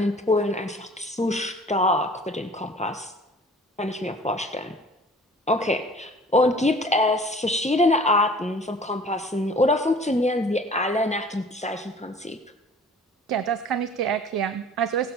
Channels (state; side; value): normal; both; correlation 0.48